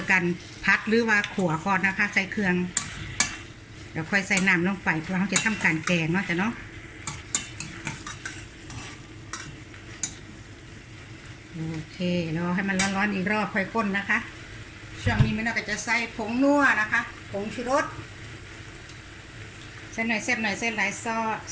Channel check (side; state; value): both; identical; correlation 1.00